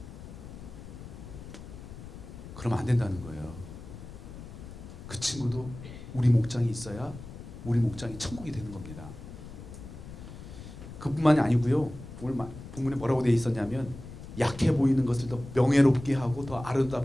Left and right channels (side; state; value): left; noise; rumble, 13 dB below the sound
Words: 그러면 안 된다는 거예요. 그 친구도 우리 목장이 있어야 우리 목장이 천국이 되는 겁니다. 그뿐만이 아니고요. 오늘 본문에 뭐라고 되어 있었냐면 약해 보이는 것을 더 명예롭게 하고 더